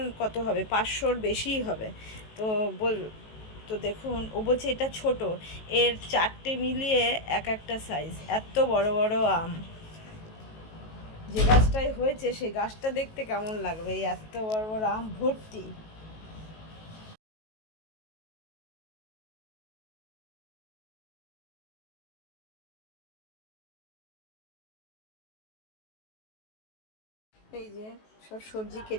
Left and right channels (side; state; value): right; late; 19 ms